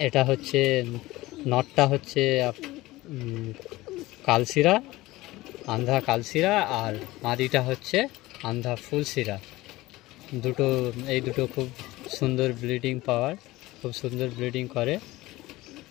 এটা হচ্ছে নটটা হচ্ছে কালসিরা, আন্ধ্রা কালসিরা, আর মাদিটা হচ্ছে আন্ধ্রা ফুলসিরা। এই দুটো খুব সুন্দর ব্লিডিং পাওয়ার, খুব সুন্দর ব্লিডিং করে।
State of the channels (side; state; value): right; quieter; 18.8 dB